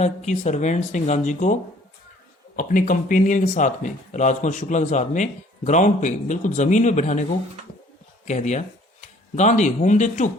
कि सर्वेंट्स ने गांधी को अपने कंपेनियन के साथ में, राजकुमार शुक्ला के साथ में, ग्राउंड पे, बिल्कुल जमीन पे बैठाने को कह दिया। Gandhi whom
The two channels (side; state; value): both; normal; correlation 0.56